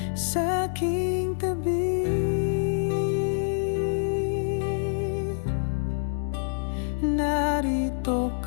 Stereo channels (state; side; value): silent; right; digital silence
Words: sa aking tabi. Narito